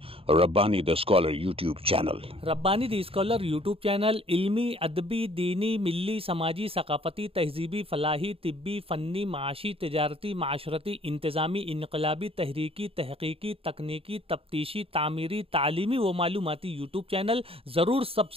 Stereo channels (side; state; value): left; late; 0.27 ms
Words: Rabbani the scholar YouTube channel. Rabbani the scholar YouTube channel इल्मी, अदबी, दीनी, मिल्ली, समाजी, सकाफती, तहजीबी, फलाही, तिब्बी, फ़न्नी, माशी, तिजारती, माशरती, इंतज़ामी, इनकलाबी, तहरीकी, तहकीकी, तकनीकी, तफ्तीशी, तामीरी, तालीमी व मालूमाती यूट्यूब चैनल। ज़रूर